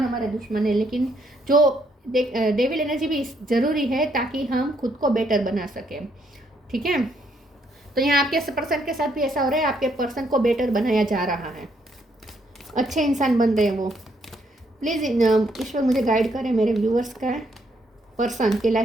हमारे दुश्मन है, लेकिन जो डेविल एनर्जी भी ज़रूरी है ताकि हम खुद को बेटर बना सकें, ठीक है। तो यहाँ आपके पर्सन के साथ भी ऐसा हो रहा है, आपके पर्सन को बेटर बनाया जा रहा है, अच्छे इंसान बन रहे हैं वो। प्लीज़ ईश्वर मुझे गाइड करें, मेरे व्यूअर्स का पर्सन की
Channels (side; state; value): both; normal; correlation 0.72